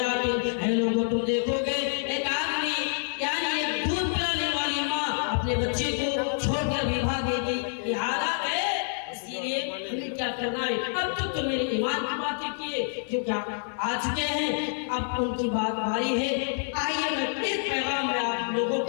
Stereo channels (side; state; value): right; silent; 60 dB below the other